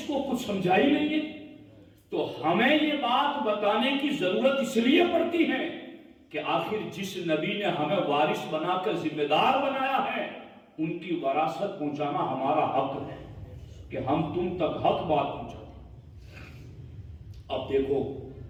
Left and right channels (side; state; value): both; identical; correlation 1.00